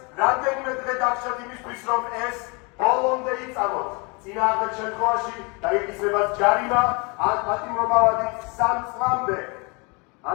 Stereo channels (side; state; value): right; quieter; 30.3 dB